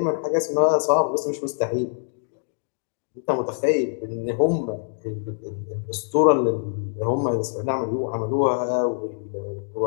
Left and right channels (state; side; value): silent; right; digital silence